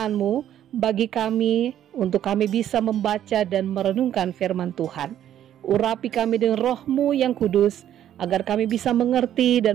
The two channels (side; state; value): left; quieter; 11.0 dB